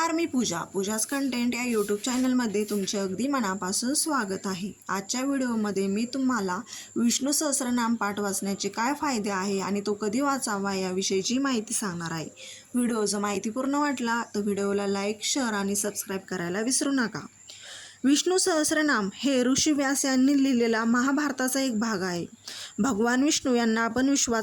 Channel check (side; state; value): both; identical; correlation 1.00